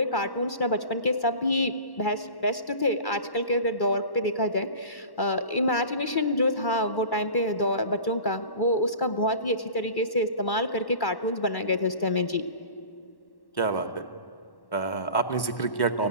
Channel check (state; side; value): late; right; 1.1 ms